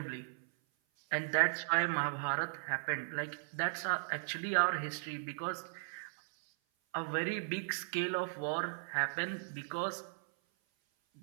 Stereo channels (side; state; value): left; silent; 53 dB below the other